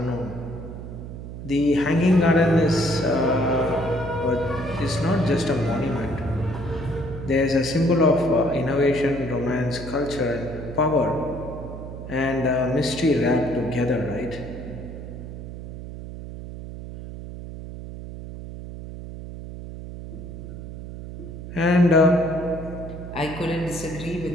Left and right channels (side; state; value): right; noise; hum, 10 dB below the sound